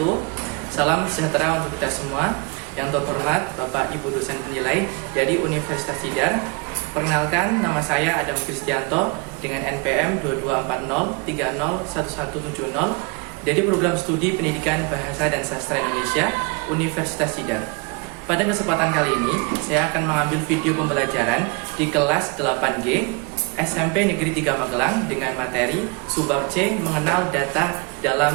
Salam sejahtera untuk kita semua. Yang terhormat Bapak Ibu dosen penilai dari Universitas Tidar. Perkenalkan, nama saya Adam Kristianto dengan NPM 2240301170 dari program studi Pendidikan Bahasa dan Sastra Indonesia Universitas Tidar. Pada kesempatan kali ini, saya akan mengambil video pembelajaran di kelas 8G SMP Negeri 3 Magelang dengan materi Subbab C mengenal data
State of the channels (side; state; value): left; quieter; 30.9 dB